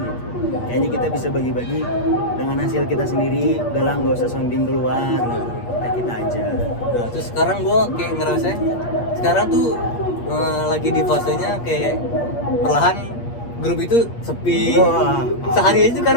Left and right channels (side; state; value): right; late; 8.5 ms